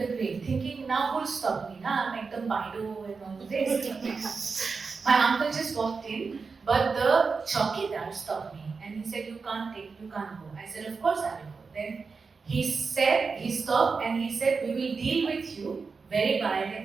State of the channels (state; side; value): quieter; left; 4.8 dB